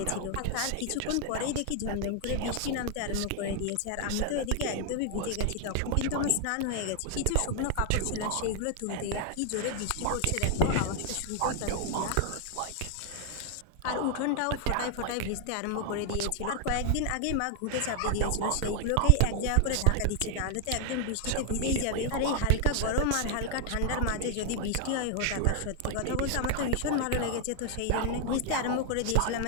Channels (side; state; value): both; different; correlation 0.00